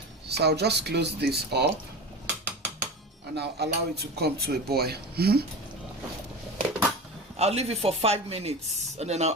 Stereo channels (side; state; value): both; normal; correlation 0.29